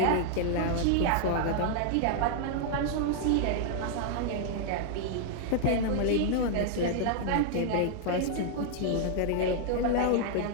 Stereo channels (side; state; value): both; different; correlation -0.01